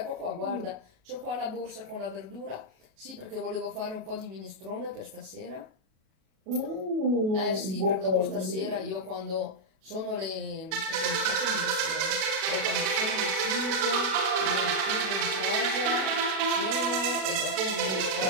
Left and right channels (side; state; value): left; late; 37 ms